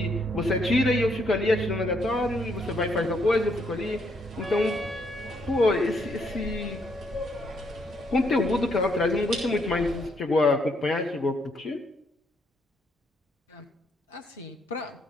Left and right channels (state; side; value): normal; both; correlation 0.73